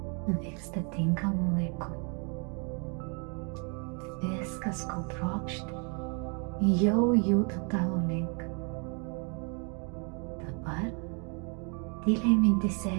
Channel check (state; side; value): quieter; left; 36.2 dB